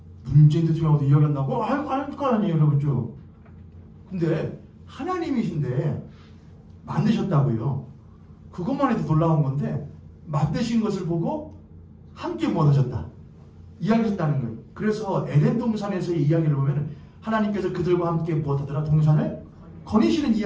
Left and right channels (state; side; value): identical; both; correlation 1.00